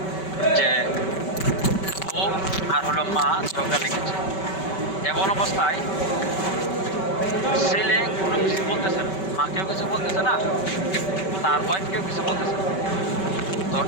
যে বউ আর হলো মা ঝগড়া লেগেছে, এমন অবস্থায় ছেলে কোনো কিছু বলতেছে না, মাকেও কিছু বলতেছে না, তার ওয়াইফকেও কিছু বলতেছে না। তো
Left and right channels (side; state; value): right; late; 5.2 ms